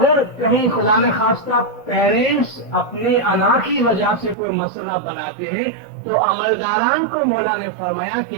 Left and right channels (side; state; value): left; drops out; at 4.4 s